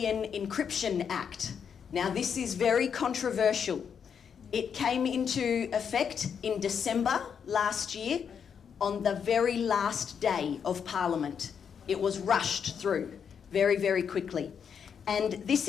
Encryption Act. Now, this is very controversial. It came into effect in December last year on the very last day of Parliament. It was rushed through very, very quickly. And this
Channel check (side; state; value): right; quieter; 7.2 dB